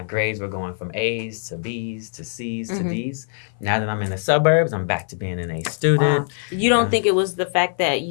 grades were going from A's to B's to C's to D's. Now that I'm in the suburbs, I'm back to being an A student. Wow. You don't think it was the fact that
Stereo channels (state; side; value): silent; right; 57 dB below the other